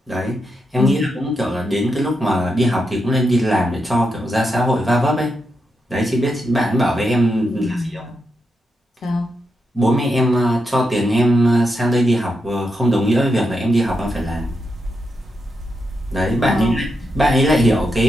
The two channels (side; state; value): both; normal; correlation 0.85